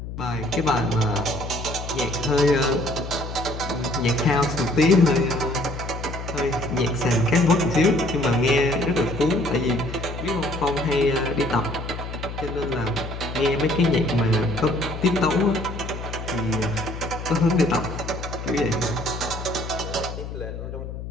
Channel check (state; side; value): noise; left; hum, 8 dB below the sound